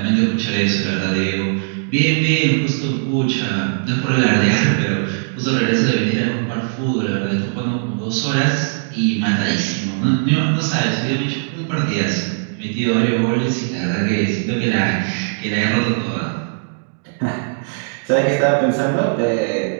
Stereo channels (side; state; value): left; silent; digital silence